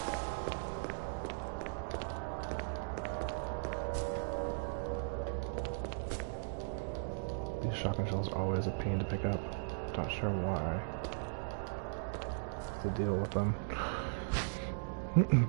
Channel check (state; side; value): silent; left; digital silence